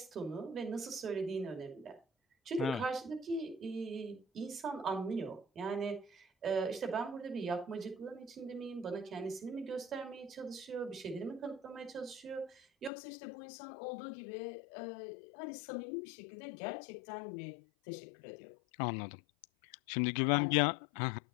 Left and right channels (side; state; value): right; drops out; at 12.9 s